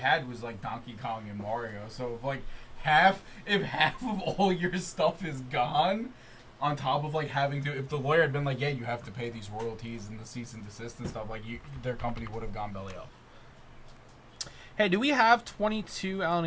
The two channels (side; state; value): both; identical; correlation 1.00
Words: was like Donkey Kong and Mario. So if like half of all your stuff is gone, on top of like having to, if the lawyer had been like, yeah, you have to pay these royalties and the cease and desist and stuff, like their company would have gone belly up. Hey, do we have 22 Allen